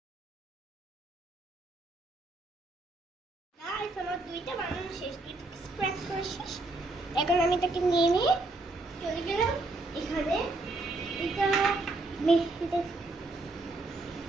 Guys, আমার দুইটা বানানো শেষ, দুইটা স্প্রেড করা শেষ। এখন আমি এটাকে নিয়ে চলে গেলাম এখানে। এটা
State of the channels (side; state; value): left; quieter; 3.1 dB